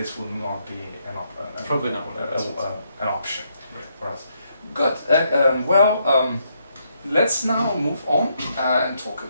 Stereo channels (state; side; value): inverted; both; correlation -0.76